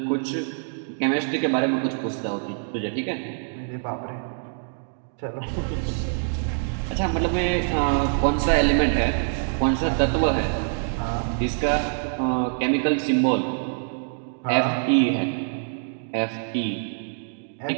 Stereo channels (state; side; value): silent; left; digital silence